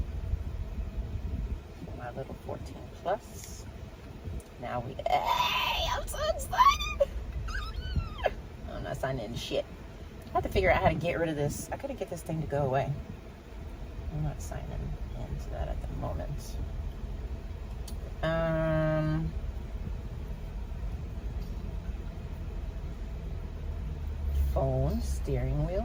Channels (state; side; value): identical; both; correlation 1.00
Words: My little 14 plus. Now we. Hey! I'm so excited! I'm not signing in shit. I have to figure out how to get rid of this. I gotta get this thing to go away. I'm not signing into that at the moment. Phone, steering